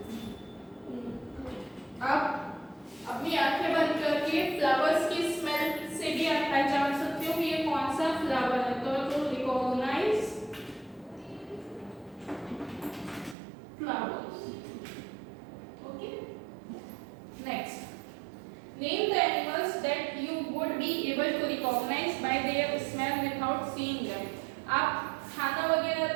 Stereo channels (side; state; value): left; drops out; at 13.4 s